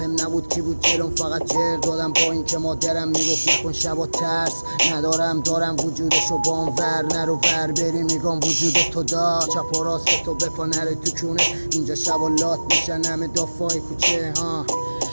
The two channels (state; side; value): inverted; both; correlation -1.00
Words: نبود کی بود جلوم، فقط جر دادم با این که مادرم میگفت نکن شبا ترس ندارم. دارم وجودشو بام ور نرو ور بری میگم وجود تو دا. چپ و راست تو بپا نره تو کونه، اینجا شبا لات میشن همه دافای کوچه ها.